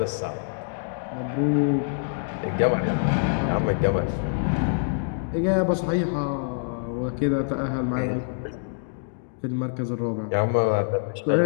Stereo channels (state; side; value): silent; right; digital silence